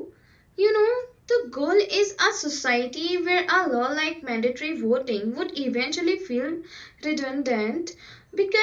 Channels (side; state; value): both; identical; correlation 1.00